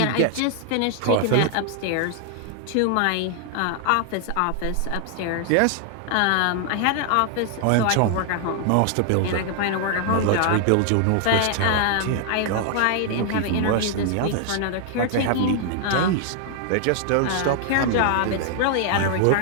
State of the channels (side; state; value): both; different; correlation 0.00